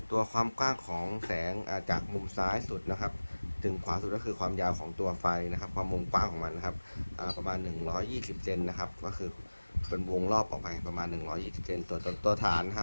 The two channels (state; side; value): inverted; both; correlation -1.00